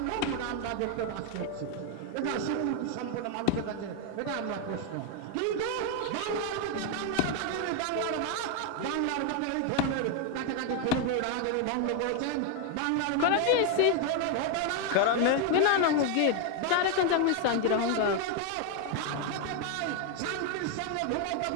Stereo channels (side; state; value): both; different; correlation 0.01